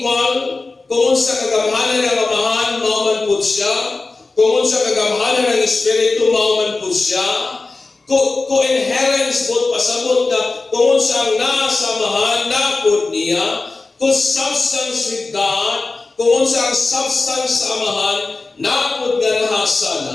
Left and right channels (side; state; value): right; quieter; 3.6 dB